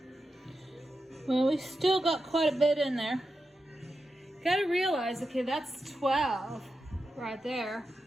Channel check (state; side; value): normal; both; correlation 0.89